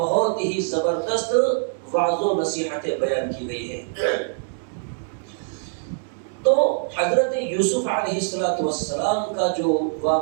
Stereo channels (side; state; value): left; silent; 63 dB below the other